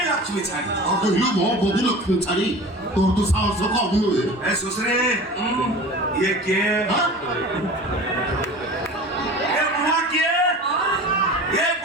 লক্ষ্মী ছাড়ি ଆଉ କହିଲୁ ମୋ ବଧି ଲକ୍ଷ୍ମୀ ଛାଡି ତୋର ତ ସାହସ କମ ନୁହେଁ ए सुसरे ये के ये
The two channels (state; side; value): normal; both; correlation 0.37